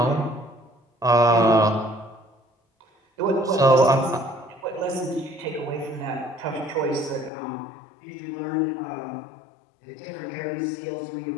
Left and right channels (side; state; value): right; drops out; at 7.3 s